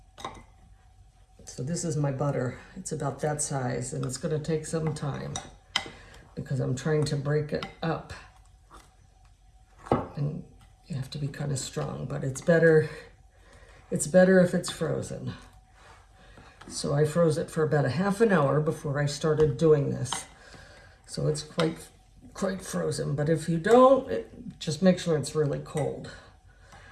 So this is my butter. It's about that size, and it's going to take some time because I'm trying to break it up. And you have to be kind of strong, but it's better if it's frozen. So I froze it for about a half an hour before I started doing this. So it's quite frozen, but if you don't, just make sure it's really cold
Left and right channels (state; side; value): identical; both; correlation 1.00